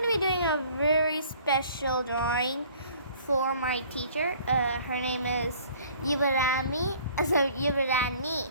to be doing a very special drawing for my teacher. Her name is Yuvarani.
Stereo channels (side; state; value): both; inverted; correlation -0.53